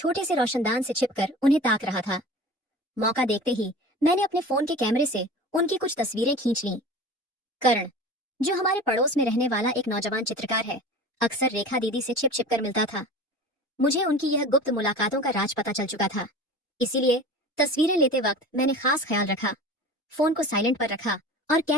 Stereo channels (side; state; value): both; normal; correlation 0.37